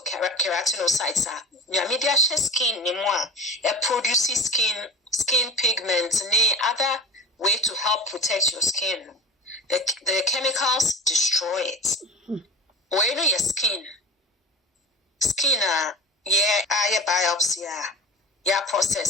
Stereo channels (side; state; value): both; normal; correlation 0.33